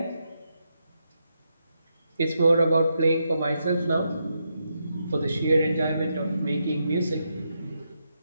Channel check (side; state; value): both; inverted; correlation -0.82